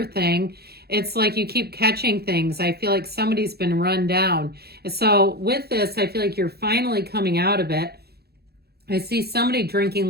thing, it's like you keep catching things. I feel like somebody's been run down. So with this, I feel like you're finally coming out of it. I see somebody drinking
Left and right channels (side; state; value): left; late; 0.46 ms